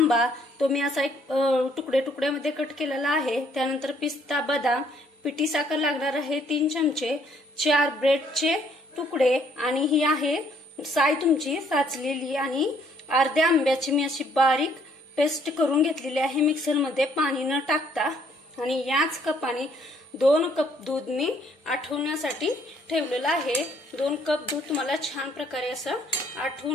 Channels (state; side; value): normal; both; correlation 0.65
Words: तो मी असा एक तुकडे तुकड्यामध्ये कट केलेला आहे। त्यानंतर पिस्ता, बदाम, पिठी साखर लागणार आहे 3 चमचे, 4 ब्रेडचे तुकडे आणि ही आहे साय तुमची साचलेली आणि अर्ध्या आंब्याची मी अशी बारीक पेस्ट करून घेतलेली आहे मिक्सर मध्ये पाणी न टाकता। आणि याच कपाने 2 कप दूध मी आटवण्यासाठी ठेवलेलं आहे। 2 कप दूध तुम्हाला छान प्रकारे असं